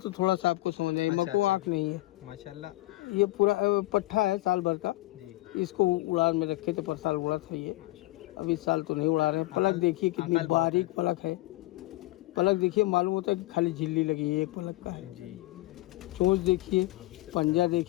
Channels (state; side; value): quieter; right; 19.4 dB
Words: थोड़ा सा आपको समझ आए, मको आँख नहीं है माशाल्लाह। ये पूरा पट्ठा है साल भर का। जी इसको उड़ान में रखे थे, पर साल उड़ा था ये, अब इस साल तो नहीं उड़ा रहे हैं। पलक देखिए कितनी बारीक पलक है, पलक देखिए मालूम होता है कि खाली झिल्ली लगी है, एक पलक का है जी। चोंच देखिए, पंजा